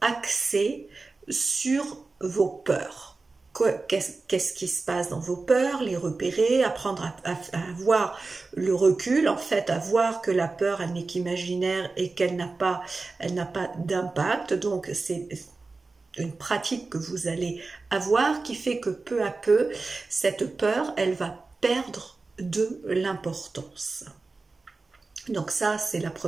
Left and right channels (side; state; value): left; quieter; 3.8 dB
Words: axées sur vos peurs. Qu'est-ce qui se passe dans vos peurs, les repérer, apprendre à avoir le recul, en fait, à voir que la peur, elle n'est qu'imaginaire et qu'elle n'a pas d'impact. Donc, c'est une pratique que vous allez avoir qui fait que peu à peu, cette peur, elle va perdre de l'importance. Donc ça, c'est la